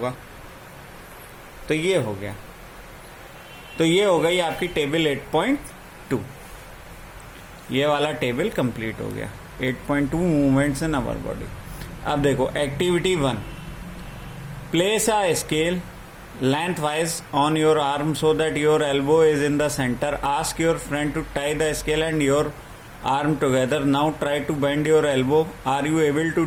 तो ये हो गया। तो ये हो गई आपकी टेबल 8.2। ये वाला टेबल कंप्लीट हो गया। 8.2 मूवमेंट्स इन अवर बॉडी। अब देखो activity 1, place a scale lengthwise on your arm so that your elbow is in the center. Ask your friend to tie the scale and your arm together. Now try to bend your elbow. Are you able to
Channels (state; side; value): identical; both; correlation 1.00